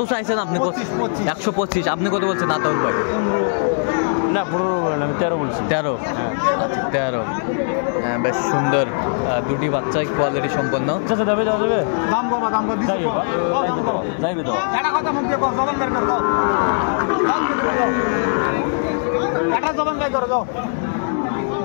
চাইছেন আপনি? 125। আপনি কত বলছেন আতাউর ভাই? না, 15 বললাম, আমি 13 বলছি। 13? আচ্ছা, 13। বেশ সুন্দর দুটি বাচ্চাই, কোয়ালিটি সম্পন্ন।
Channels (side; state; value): right; silent; digital silence